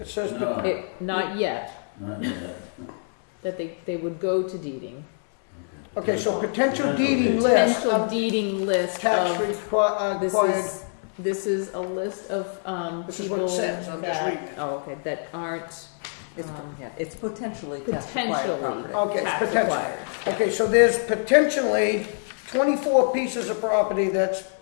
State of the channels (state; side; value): silent; right; digital silence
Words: says not yet. Not yet. That they would go to deeding. okay. So potential deeding list. Potential deeding list Tax of acquired. this is a list of This is people what it says. I'm just reading it. that aren't It's potentially potentially Okay, it's tax potential. acquired. Okay, so there's potentially 24 pieces of property that